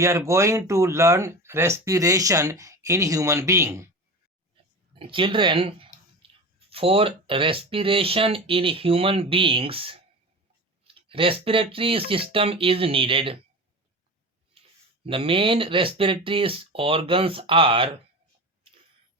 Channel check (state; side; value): normal; both; correlation 0.29